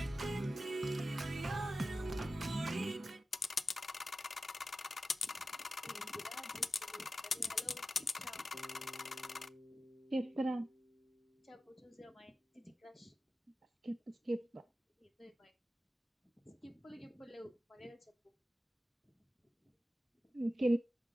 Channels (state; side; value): normal; both; correlation 0.93